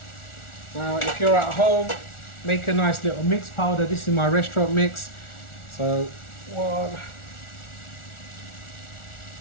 Now if you're at home, make a nice little mix powder. This is my restaurant mix. So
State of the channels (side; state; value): right; late; 1.4 ms